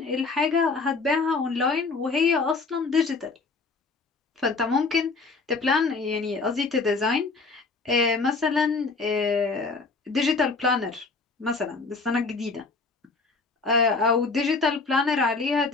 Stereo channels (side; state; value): right; quieter; 4.1 dB